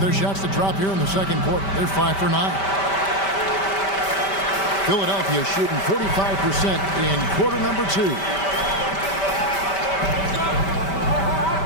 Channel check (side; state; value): right; late; 5.1 ms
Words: their shots to drop here in the second quarter. They're 5 for 9. Philadelphia shooting 45% in quarter number 2.